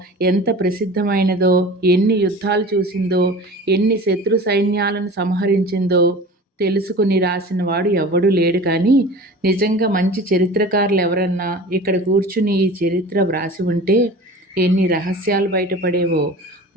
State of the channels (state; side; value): normal; both; correlation 0.38